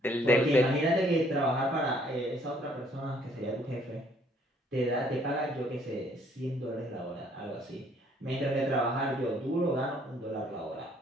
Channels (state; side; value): normal; both; correlation 0.63